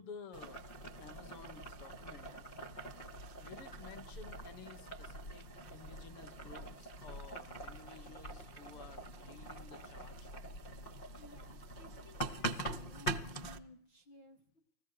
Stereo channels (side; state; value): right; late; 5.7 ms